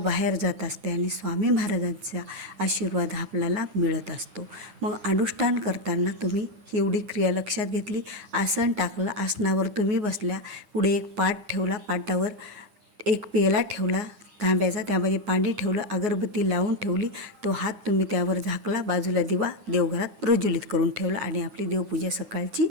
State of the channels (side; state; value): left; late; 8.8 ms